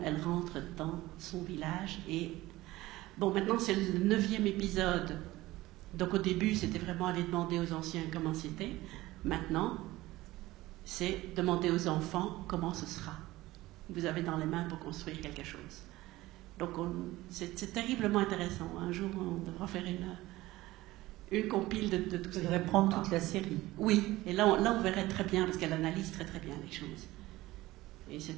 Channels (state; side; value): quieter; left; 18.0 dB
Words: rentre dans son village. Et bon, maintenant, c'est le 9e épisode. Donc, au début, c'était vraiment aller demander aux anciens comment c'était. Maintenant, c'est demander aux enfants comment ce sera. Vous avez dans les mains pour construire quelque chose. Donc, c'est terriblement intéressant. Un jour, on devra faire une compile de tout ça. Vous devrez prendre toute la série. Oui, et là, on verrait très bien, parce qu'elle analyse très très bien les choses. Et